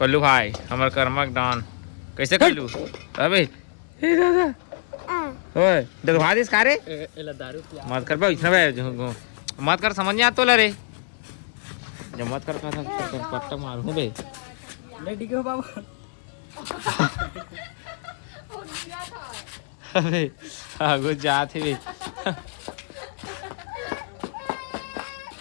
भाई हमार कर्मक दान कैसे कल्लू अबे ए दादा ओए देखवा दिस का रे एला दारू पिया मत कर बे इतना बे मत कर समझ नहीं आता ला रे जब मत कर था पट्टा मारूं बे ले डिगो बाबू अबे आगो जात है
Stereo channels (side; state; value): right; silent; 62 dB below the other